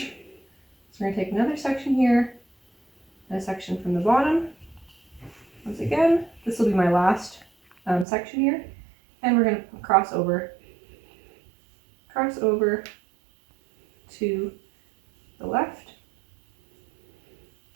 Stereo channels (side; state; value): left; drops out; at 8.1 s